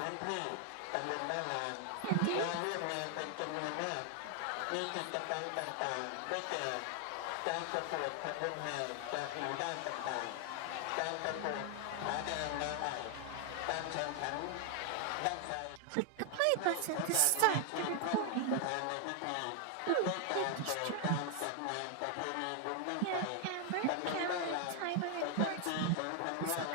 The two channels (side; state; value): both; different; correlation 0.00